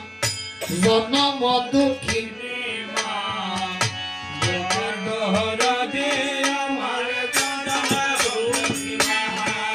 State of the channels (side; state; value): both; identical; correlation 1.00